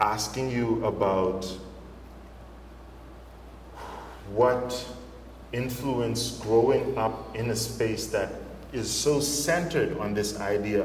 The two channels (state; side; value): identical; both; correlation 1.00